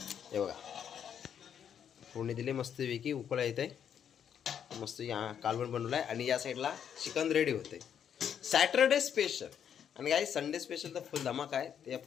हे बघा फोडणी दिली मस्त वेगळी उकळा येत आहे. मस्त कालवण बनवलं आहे आणि या साईडला चिकन रेडी होते. सॅटरडे स्पेशल आणि काही संडे स्पेशल तर फुल धमाका आहे, ते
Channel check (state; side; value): quieter; right; 8.5 dB